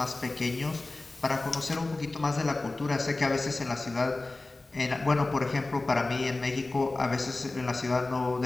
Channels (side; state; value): right; quieter; 3.1 dB